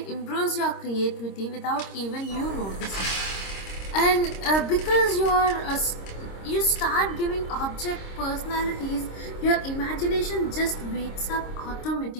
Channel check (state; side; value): late; right; 26 ms